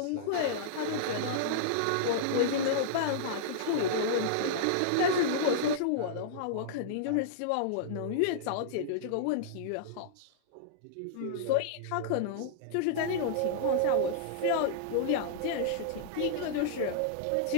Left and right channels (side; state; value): both; different; correlation -0.02